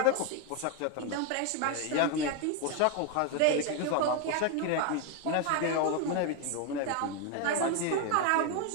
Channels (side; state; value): both; different; correlation 0.01